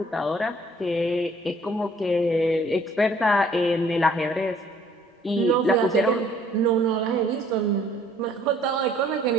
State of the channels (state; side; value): normal; both; correlation 0.59